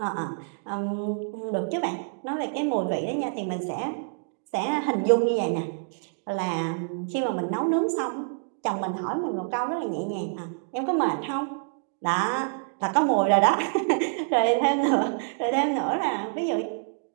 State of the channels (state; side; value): silent; left; digital silence